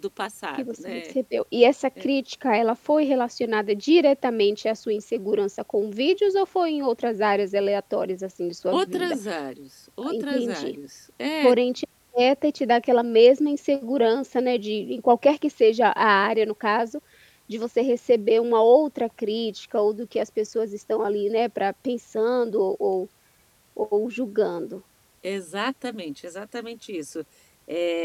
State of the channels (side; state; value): both; identical; correlation 1.00